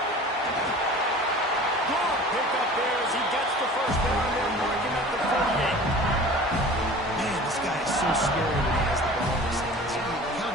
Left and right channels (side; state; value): both; normal; correlation 0.42